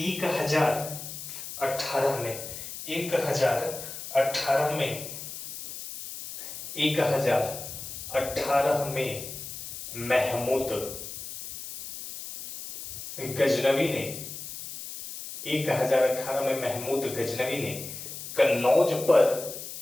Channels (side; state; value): left; noise; hiss, 10 dB below the sound